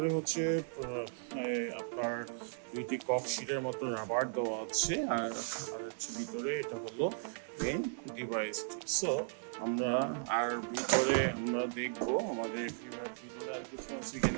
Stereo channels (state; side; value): silent; left; digital silence